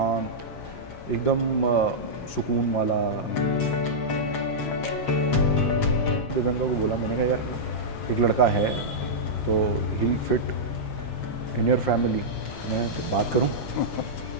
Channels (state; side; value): late; right; 7.6 ms